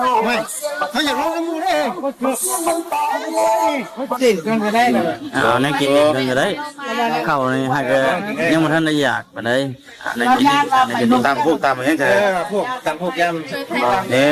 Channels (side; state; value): both; identical; correlation 1.00